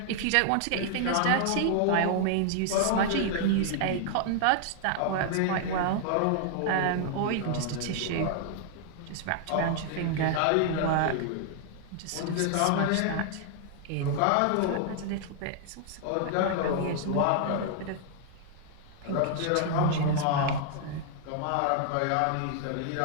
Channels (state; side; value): different; both; correlation 0.00